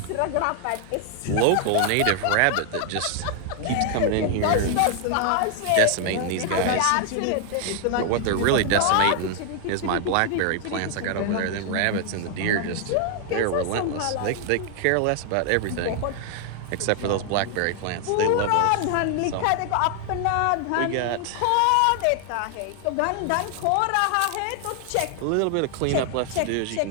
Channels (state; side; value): different; both; correlation 0.00